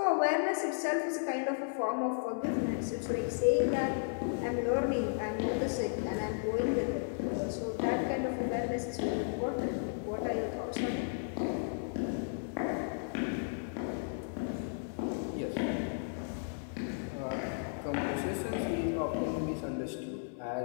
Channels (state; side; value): silent; right; digital silence